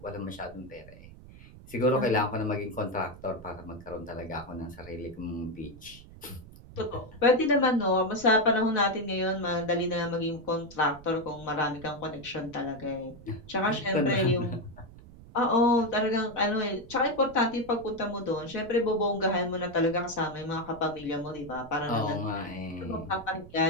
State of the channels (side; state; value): right; noise; rumble, 19 dB below the sound